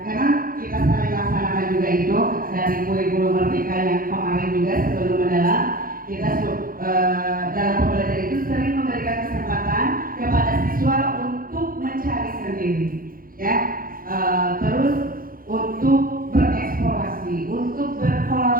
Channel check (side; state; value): left; late; 0.42 ms